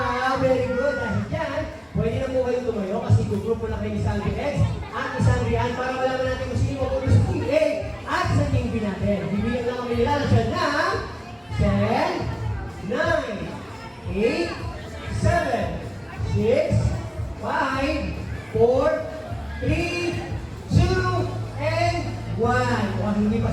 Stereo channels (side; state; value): both; identical; correlation 1.00